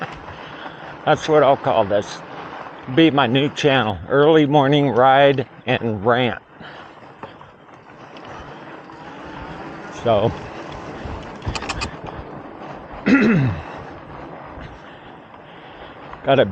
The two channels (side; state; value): both; identical; correlation 1.00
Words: That's what I'll call this. Be my new channel, early morning ride and rant. So got a